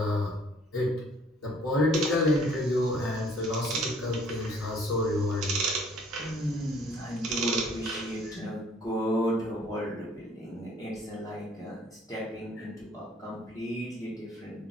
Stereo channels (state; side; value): normal; both; correlation 0.58